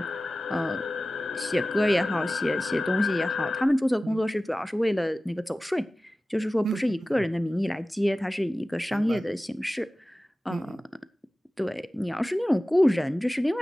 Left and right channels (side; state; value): both; normal; correlation 0.96